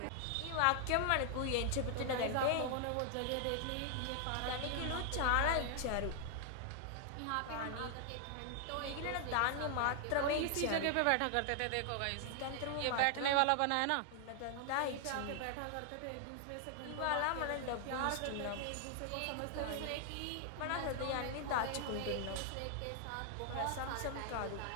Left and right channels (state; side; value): different; both; correlation 0.00